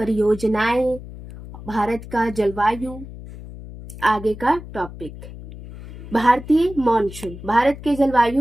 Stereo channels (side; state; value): left; noise; hum, 14 dB below the sound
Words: भारत का जलवायु। आगे का टॉपिक भारतीय मॉनसून। भारत के